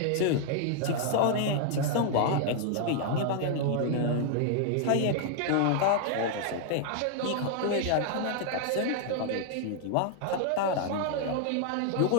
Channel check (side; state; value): both; different; correlation 0.00